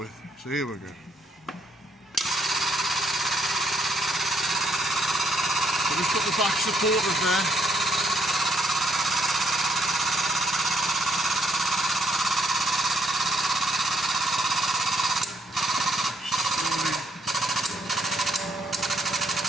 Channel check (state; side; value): normal; both; correlation 0.71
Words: So here we go. So we've got the back supporters there.